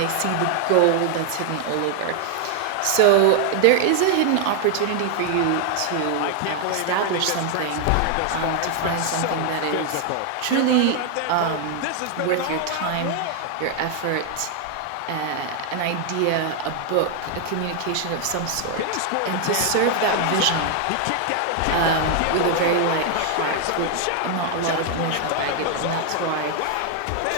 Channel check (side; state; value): both; different; correlation 0.00